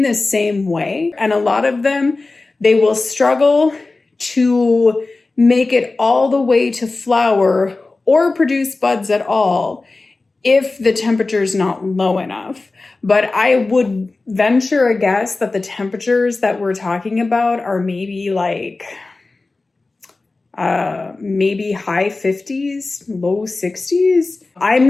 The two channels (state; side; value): quieter; right; 3.5 dB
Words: the same way. And a lot of them, they will struggle to make it all the way to flower or produce buds at all if the temperature is not low enough. But I would venture a guess that the temperatures that we're talking about are maybe like maybe high 50s, low 60s. I'm